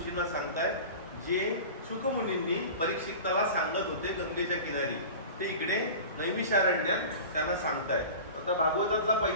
सांगतायत, जे शुकमुनींनी परीक्षिताला सांगत होते गंगेच्या किनारी, ते इकडे नैमिषारण्यात त्यांना सांगतायत. आता भागवतातला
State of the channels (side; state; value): both; inverted; correlation -0.36